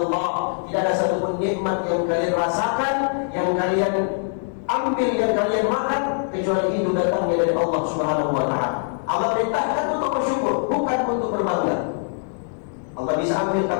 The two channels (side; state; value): right; silent; digital silence